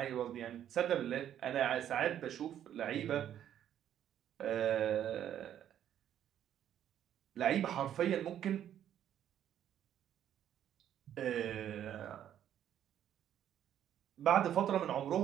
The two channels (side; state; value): left; quieter; 10.5 dB